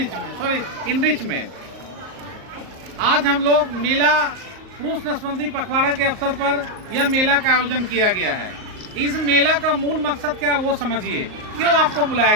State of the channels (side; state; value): left; late; 38 ms